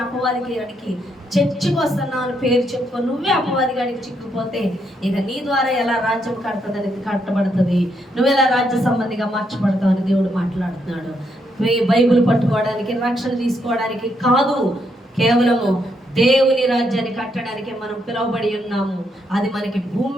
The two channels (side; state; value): both; normal; correlation 0.77